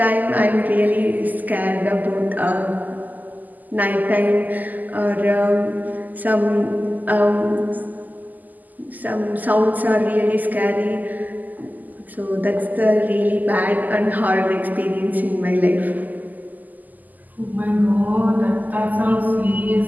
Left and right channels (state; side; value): late; left; 0.082 ms